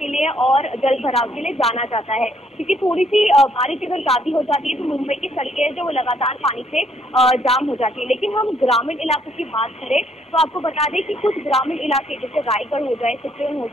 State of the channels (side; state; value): both; normal; correlation 0.68